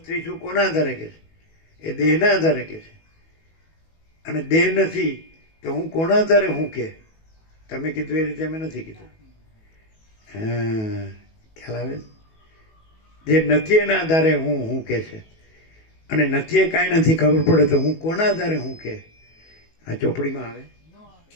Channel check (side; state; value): right; late; 19 ms